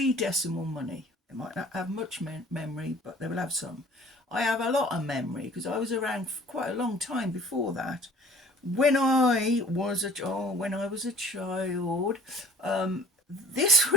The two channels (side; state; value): both; normal; correlation 0.49